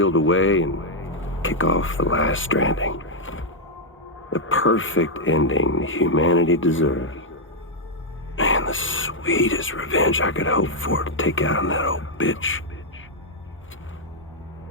away and kick off the last Stranding. The perfect ending humanity deserves. Man, the sweetest revenge I could hope for to take out on that old bitch.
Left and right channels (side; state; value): both; normal; correlation -0.02